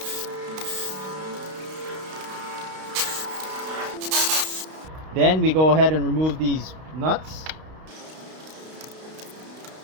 Then we go ahead and remove these nuts.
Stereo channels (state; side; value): late; left; 32 ms